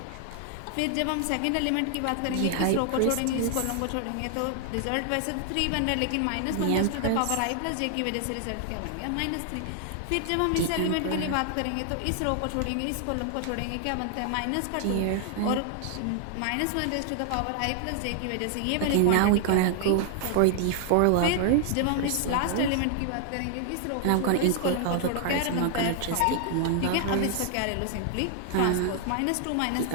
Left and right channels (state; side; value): different; both; correlation 0.00